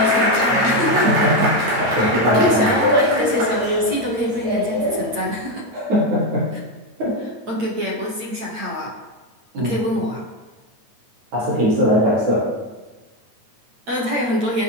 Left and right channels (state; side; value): late; left; 8.7 ms